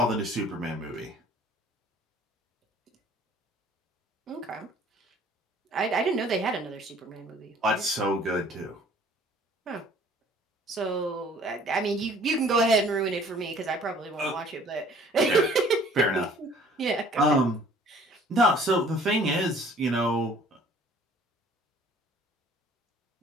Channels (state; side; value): normal; both; correlation 0.54